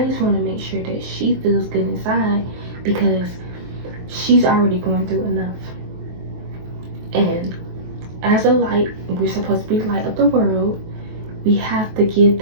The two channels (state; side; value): late; left; 23 ms